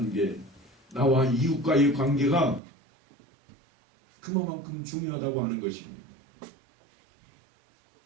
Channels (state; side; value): drops out; left; at 2.6 s